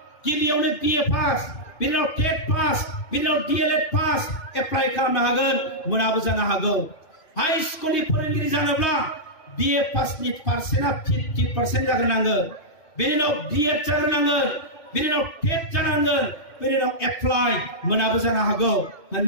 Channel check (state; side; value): late; right; 2.6 ms